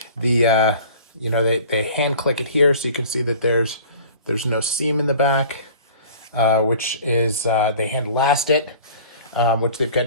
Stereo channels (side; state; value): both; inverted; correlation -0.44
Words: They hand click it here, so you can see that there's no seam in the back, which is they hand last it, which they've